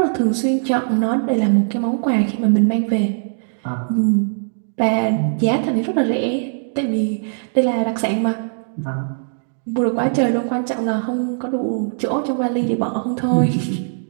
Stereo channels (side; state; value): left; silent; digital silence